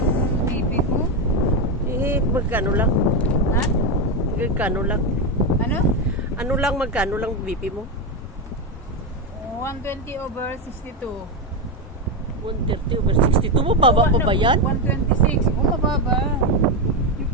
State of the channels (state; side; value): normal; both; correlation 0.09